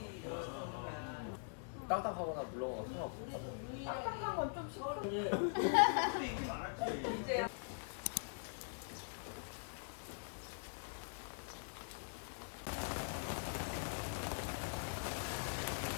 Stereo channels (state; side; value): silent; right; digital silence